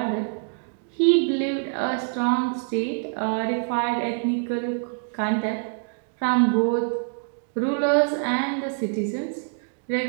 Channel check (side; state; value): left; silent; digital silence